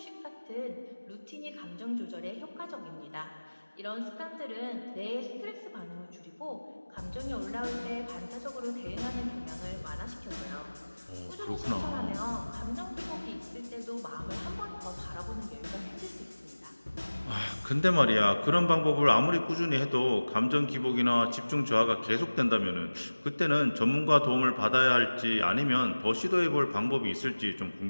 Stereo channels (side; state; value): both; inverted; correlation -1.00